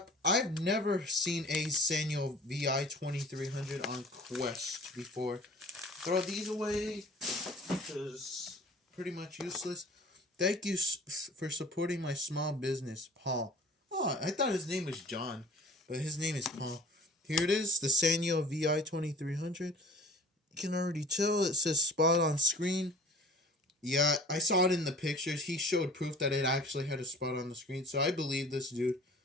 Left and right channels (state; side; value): normal; both; correlation 0.46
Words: I've never seen a Sanyo VI 2300 on Quest before. Throw these away because pretty much useless. Thank you for supporting my small business, Paul. Oh, I thought his name was John, but his name is Paul. Here it is, the Sanyo VI 2300. You can already tell it says spot on screen. Yeah, I saw it in the pictures. He showed proof that it actually had a spot on the screen, so I believe this dude.